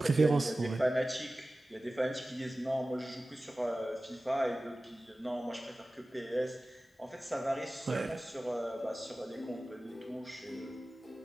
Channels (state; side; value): normal; both; correlation 0.96